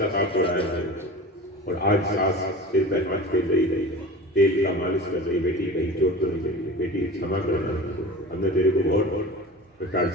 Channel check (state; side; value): normal; both; correlation 0.34